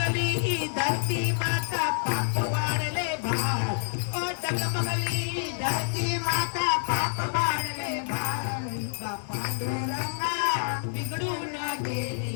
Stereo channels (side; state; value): right; silent; digital silence